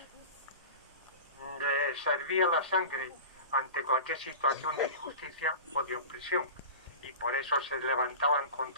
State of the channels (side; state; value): both; inverted; correlation -0.32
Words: les servía la sangre ante cualquier situación de injusticia o de opresión, y por eso se levantaban